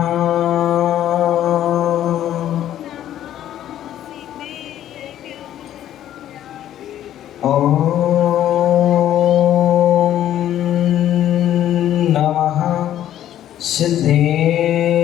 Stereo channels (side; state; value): right; quieter; 11.7 dB